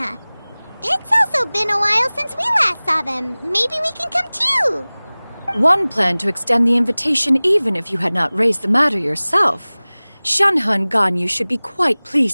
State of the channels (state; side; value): inverted; both; correlation -1.00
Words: It's also been a while since we last saw them. Maybe we can come too. One planned to extend the invitation even if you had not raised the matter yourself. Shenhe and Ganyu should be quite